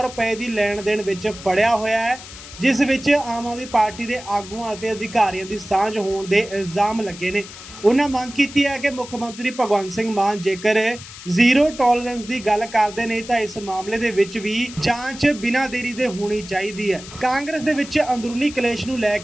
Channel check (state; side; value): noise; left; hiss, 15 dB below the sound